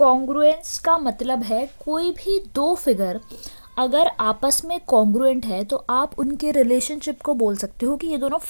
का मतलब है कोई भी दो फिगर अगर आपस में कॉन्ग्रुएंट है तो आप उनके रिलेशनशिप को बोल सकते हो कि ये दोनों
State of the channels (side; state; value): both; inverted; correlation -1.00